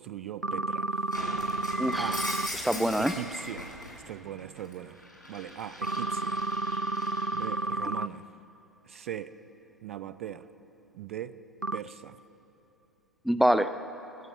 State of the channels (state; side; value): normal; both; correlation 0.67